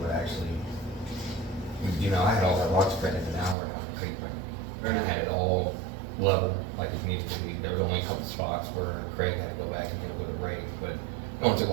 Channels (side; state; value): left; drops out; at 3.6 s